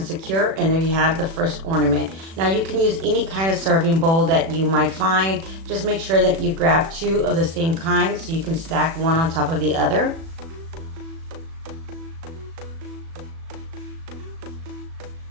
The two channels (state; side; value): late; left; 36 ms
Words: secure, and there you have the first ornament. Now you can use any kind of serving bowl that you might find. Just make sure that you grab two of the same kind so you can stack one on top of the other.